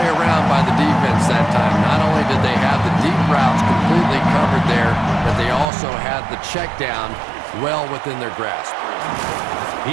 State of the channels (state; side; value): drops out; left; at 5.7 s